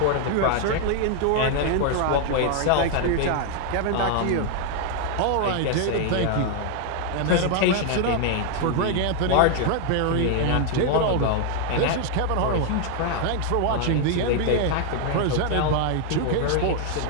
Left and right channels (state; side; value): different; both; correlation 0.00